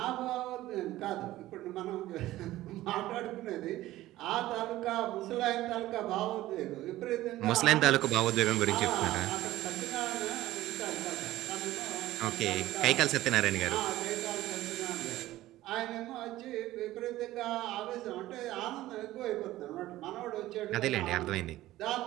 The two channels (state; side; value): quieter; left; 15.8 dB